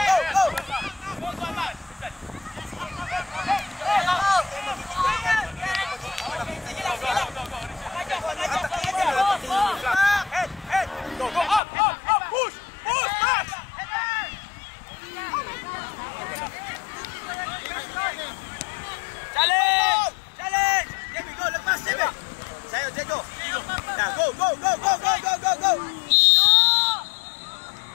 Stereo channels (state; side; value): drops out; right; at 11.6 s